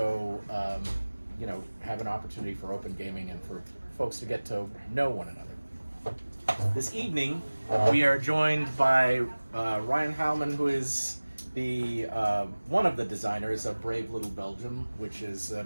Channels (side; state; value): both; inverted; correlation -1.00